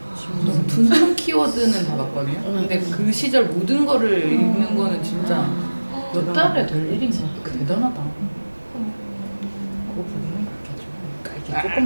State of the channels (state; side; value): inverted; both; correlation -1.00